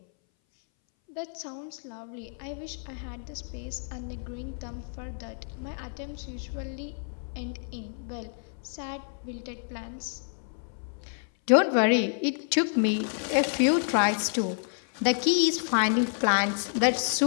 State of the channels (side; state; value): right; silent; 59 dB below the other